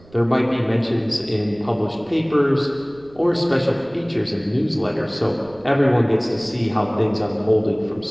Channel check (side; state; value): right; noise; rumble, 25 dB below the sound